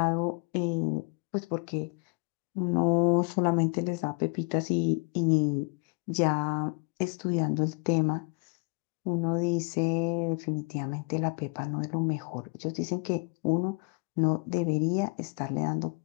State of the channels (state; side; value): quieter; right; 32.7 dB